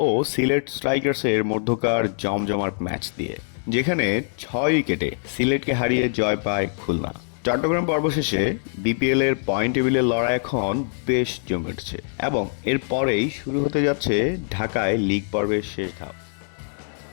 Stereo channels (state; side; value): silent; right; 63 dB below the other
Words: ও সিলেট স্ট্রাইকার্সের মধ্যকার জমজমাট ম্যাচ দিয়ে, যেখানে 6 উইকেটে সিলেটকে হারিয়ে জয় পায় খুলনা। চট্টগ্রাম পর্ব শেষে বিপিএল এর পয়েন্ট টেবিলের লড়াই এখন বেশ জমে উঠছে এবং এর পরেই শুরু হতে যাচ্ছে ঢাকায় লিগ পর্বের শেষ ধাপ।